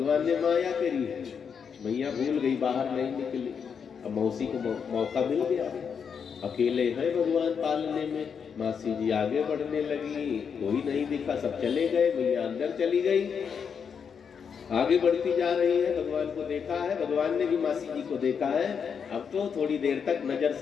ने माया करी है, मैया भूल गई, बाहर नहीं निकली। अब मौसी को मौका मिल गया, अकेले है भगवान पालने में। मासी जी आगे बढ़ने लगी, कोई नहीं दिखा, सब चले गए। मैया अंदर चली गई, आगे बढ़ती जा रही है। भगवान को देखा है, भगवान ने भी मासी जी को देखा है। अब तो थोड़ी देर तक नजर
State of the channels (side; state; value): right; quieter; 6.7 dB